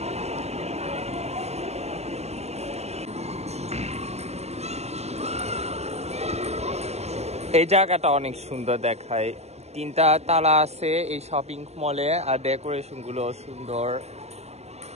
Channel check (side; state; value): left; late; 0.31 ms